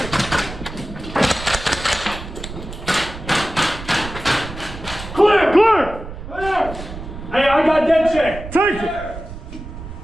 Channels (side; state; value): right; noise; rumble, 11 dB below the sound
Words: Clear! Clear! Clear! Hey, I got dead check! Take it!